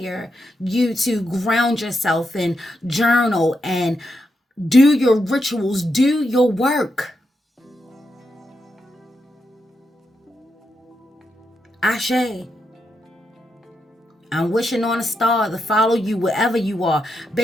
you to ground yourself and journal and do your rituals, do your work. Ashe. I'm wishing on a star to follow you wherever you are.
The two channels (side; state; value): both; normal; correlation 0.84